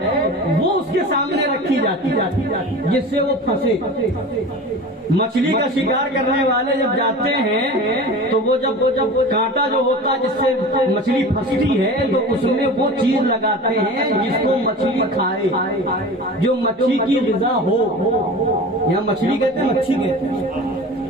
وہ اس کے سامنے رکھی جاتی جس سے وہ پھنسے۔ مچھلی کا شکار کرنے والے جب جاتے ہیں تو وہ جب کانٹا جو ہوتا ہے جس سے مچھلی پھنستی ہے تو اس میں وہ چیز لگاتے ہیں جس کو مچھلی کھائے، جو مچھلی کی غذا ہو۔ یہاں مچھلی کہتے ہیں، مچھی کہتے ہیں،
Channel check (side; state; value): both; normal; correlation 0.35